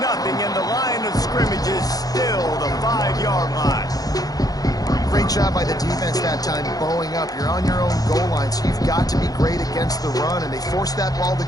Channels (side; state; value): right; late; 0.18 ms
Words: nothing, and the line of scrimmage is still the 5-yard line. Great job by the defense that time, bowing up. You're on your own goal line, so you've got to be great against the run, and they forced that ball to